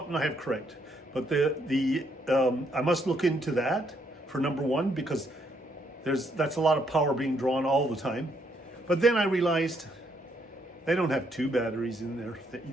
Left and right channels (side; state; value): both; normal; correlation 0.73